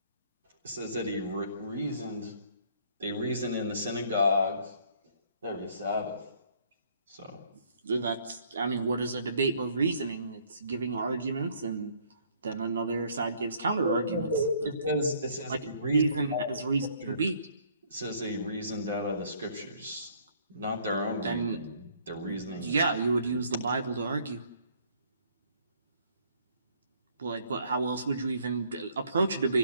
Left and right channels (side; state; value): both; inverted; correlation -0.62